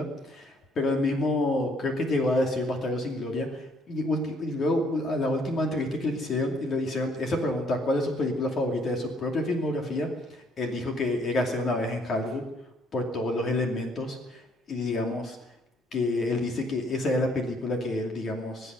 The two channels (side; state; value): both; normal; correlation 0.66